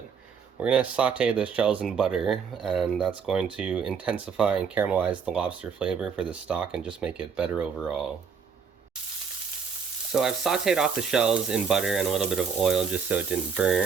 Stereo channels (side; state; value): left; quieter; 6.3 dB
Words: We're going to saute the shells in butter, and that's going to intensify and caramelize the lobster flavor for the stock and just make it better overall. So I've sauteed off the shells in butter and a little bit of oil just so it didn't